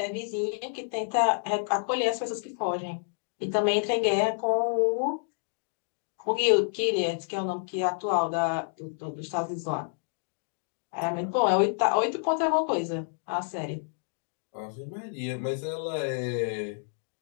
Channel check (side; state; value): right; silent; digital silence